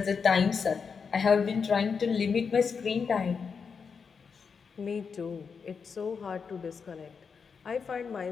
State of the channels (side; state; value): right; quieter; 5.8 dB